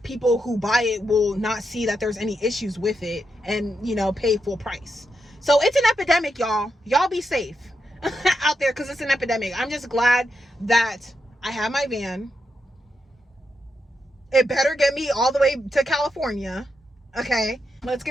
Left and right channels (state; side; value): normal; both; correlation 0.84